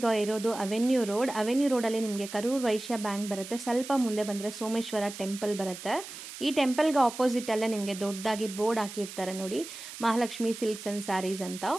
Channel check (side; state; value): right; noise; hiss, 12 dB below the sound